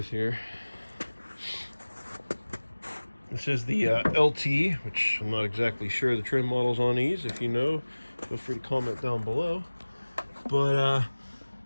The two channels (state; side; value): inverted; both; correlation -1.00